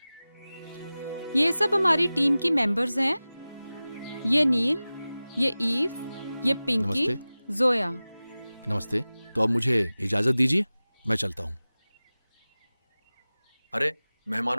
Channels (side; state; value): both; inverted; correlation -0.97